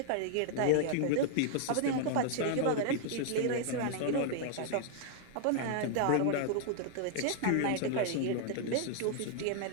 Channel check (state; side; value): different; both; correlation 0.00